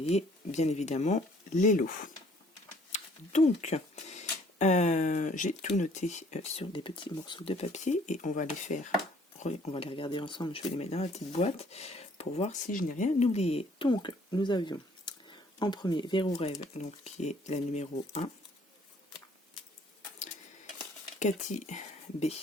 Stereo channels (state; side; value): normal; both; correlation 0.59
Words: bien évidemment les lots. Donc j'ai tout noté sur des petits morceaux de papier et on va les regarder ensemble. Je vais les mettre dans la petite boîte pour voir si je n'ai rien oublié. Donc nous avions en premier Verrou Rêve, donc qui est la numéro 1. Cathy B,